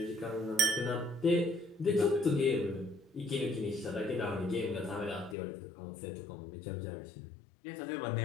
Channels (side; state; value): right; drops out; at 5.4 s